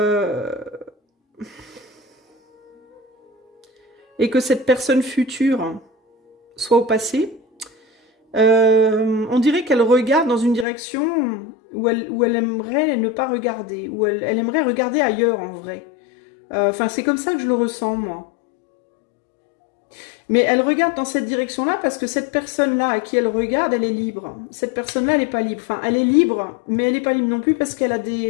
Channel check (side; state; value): right; drops out; at 10.7 s